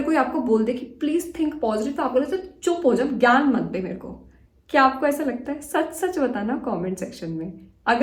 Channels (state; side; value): identical; both; correlation 1.00